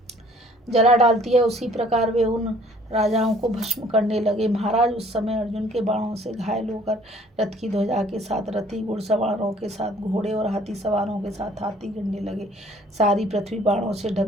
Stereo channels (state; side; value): normal; both; correlation 0.57